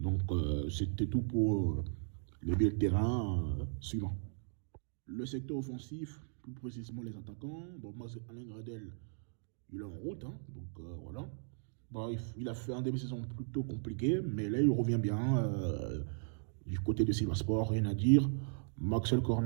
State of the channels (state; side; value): silent; left; digital silence